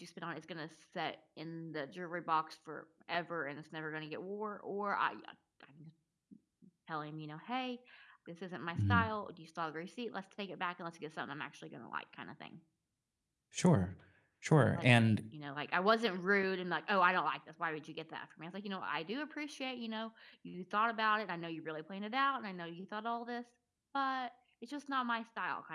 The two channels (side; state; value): both; identical; correlation 1.00